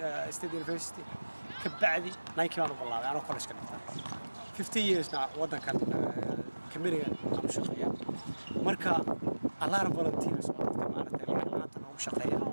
State University ka bacdi Nike baan u bilaabay anoo college ka dhigtay 50 years na waddankan kamiriga aan shaqeeyaa marka allaha volunteers oo dadka maaragtay laanta ugu shaqeeya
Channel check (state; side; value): inverted; both; correlation -1.00